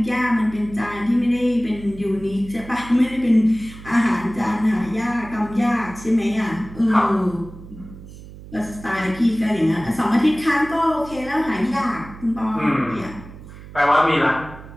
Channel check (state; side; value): noise; right; hum, 16 dB below the sound